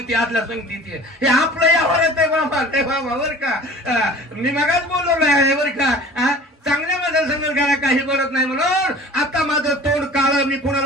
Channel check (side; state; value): both; normal; correlation 0.42